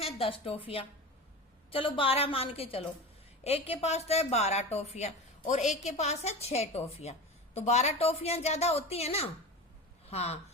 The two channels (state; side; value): normal; both; correlation 0.29